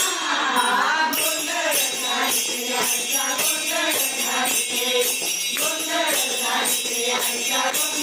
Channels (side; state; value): both; identical; correlation 1.00